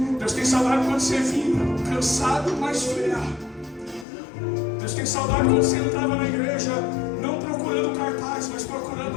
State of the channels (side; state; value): right; drops out; at 4.0 s